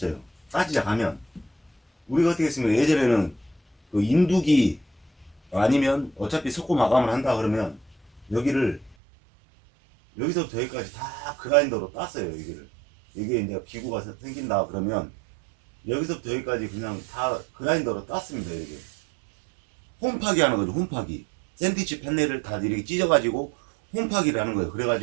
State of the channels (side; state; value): left; drops out; at 9.0 s